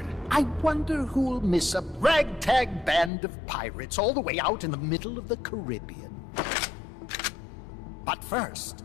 I wonder who'll miss a ragtag band of pirates all the way out in the middle of the Caribbean. But first,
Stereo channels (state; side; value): drops out; right; at 3.1 s